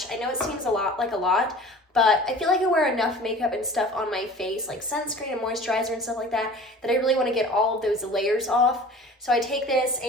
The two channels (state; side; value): normal; both; correlation 0.43